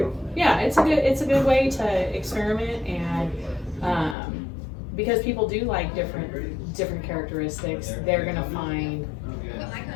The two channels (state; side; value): drops out; right; at 4.2 s